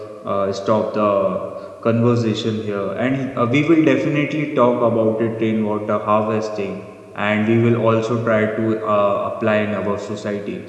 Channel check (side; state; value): both; identical; correlation 1.00